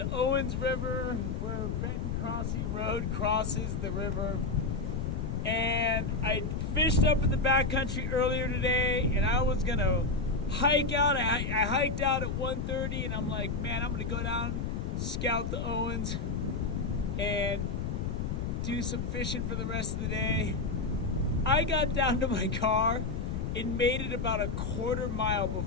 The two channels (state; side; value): noise; left; rumble, 2 dB below the sound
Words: Owens River where Benton Crossing Road crosses the river. And I fished up in the backcountry earlier today, and I was gonna hike out. I hiked out at 1:30, and I'm like, man, I'm gonna go down, scout the Owens, and do some fishing for the rest of the day. I got down to my car and made it about a quarter mile